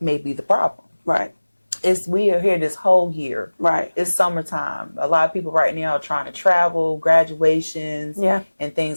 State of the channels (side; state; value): both; inverted; correlation -1.00